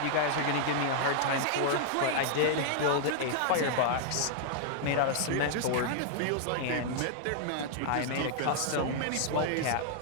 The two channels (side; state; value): both; different; correlation -0.01